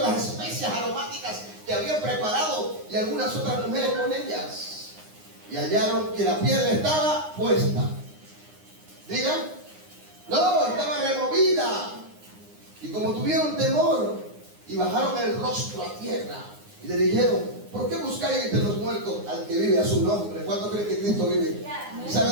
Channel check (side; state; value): left; late; 9.7 ms